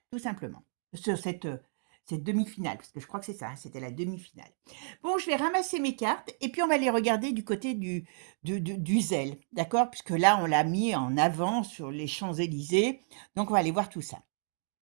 tout simplement. Sur cette demi-finale, parce que je crois que c'est ça, c'était la demi-finale. Bon, je vais ramasser mes cartes et puis on va les regarder du côté du zèle, d'accord? Puisque là, on l'a mis en avant sur les Champs-Élysées. Donc, on va aller voir tout ça.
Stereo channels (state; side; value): silent; left; digital silence